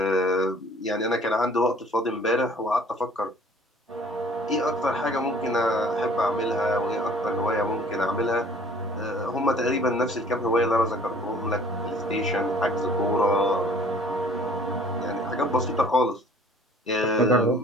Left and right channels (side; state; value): both; normal; correlation 0.53